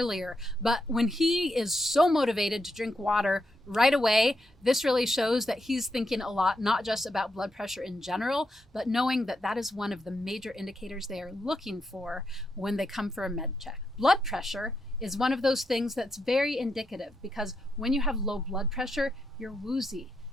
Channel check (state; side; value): normal; both; correlation 0.82